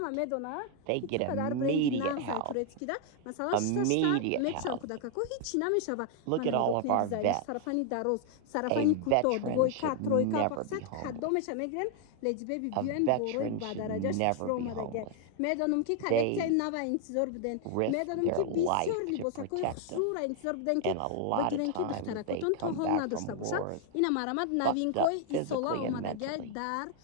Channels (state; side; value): different; both; correlation 0.00